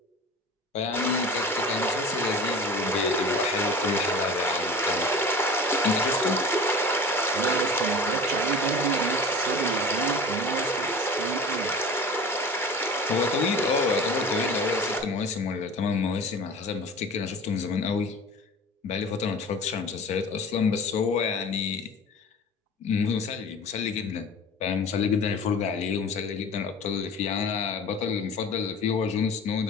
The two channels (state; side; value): normal; both; correlation 0.38